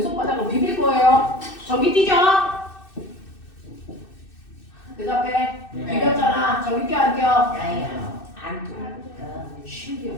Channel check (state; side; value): late; right; 2.6 ms